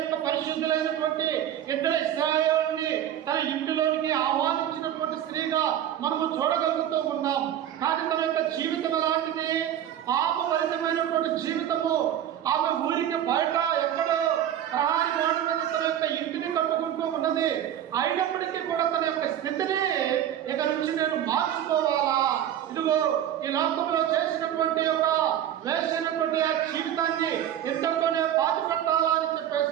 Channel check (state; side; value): quieter; left; 10.8 dB